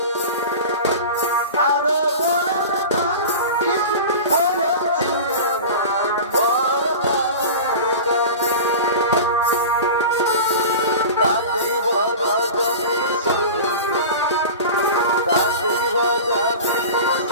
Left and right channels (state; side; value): inverted; both; correlation -0.32